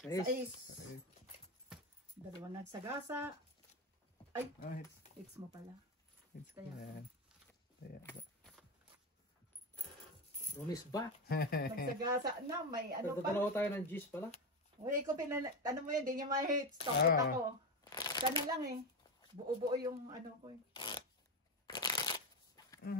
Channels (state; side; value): normal; both; correlation 0.14